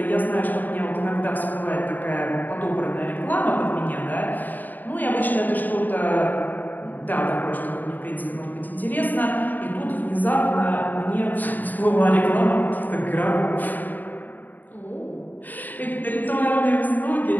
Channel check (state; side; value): late; right; 0.086 ms